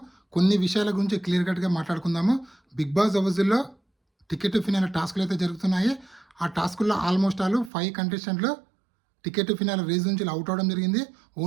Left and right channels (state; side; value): drops out; left; at 7.7 s